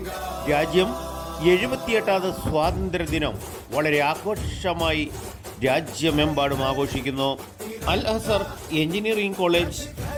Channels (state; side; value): identical; both; correlation 1.00